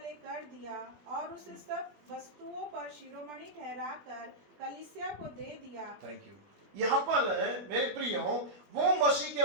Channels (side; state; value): left; late; 20 ms